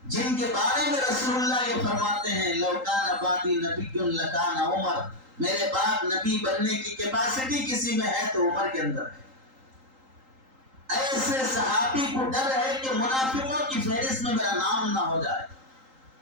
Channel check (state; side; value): late; left; 3.8 ms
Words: جن کے بارے میں رسول اللہ یہ فرماتے ہیں لو کان بعدی نبی لکان عمر، میرے بعد نبی بننے کی کیپیسٹی کسی میں ہے تو عمر کے اندر ہے. ایسے صحابی کو ڈر ہے کہ منافقوں کی فہرست میں میرا نام نہ ہو جائے.